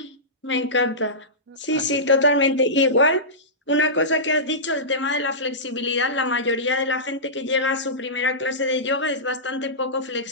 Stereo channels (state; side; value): normal; both; correlation -0.17